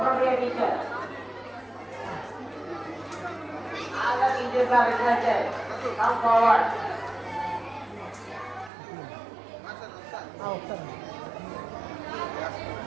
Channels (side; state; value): left; drops out; at 8.7 s